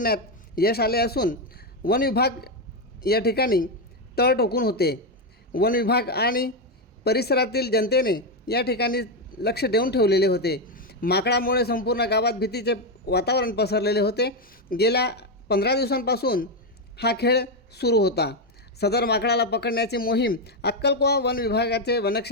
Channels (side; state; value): both; normal; correlation 0.06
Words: यश आले असून वन विभाग या ठिकाणी तळ ठोकून होते. वन विभाग आणि परिसरातील जनतेने या ठिकाणी लक्ष देऊन ठेवलेले होते. माकडामुळे संपूर्ण गावात भीतीचे वातावरण पसरलेले होते. गेल्या 15 दिवसांपासून हा खेळ सुरू होता. सदर माकडाला पकडण्याची मोहीम अक्कलकोवा वन विभागाचे